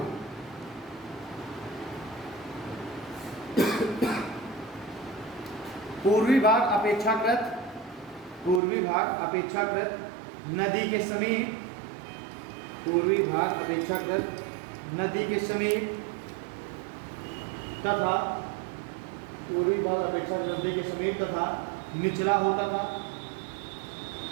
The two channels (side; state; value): left; drops out; at 8.6 s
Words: पूर्वी भाग अपेक्षाकृत नदी के समीप, पूर्वी भाग अपेक्षाकृत नदी के समीप तथा पूर्वी भाग अपेक्षाकृत नदी के समीप तथा निचला होता था।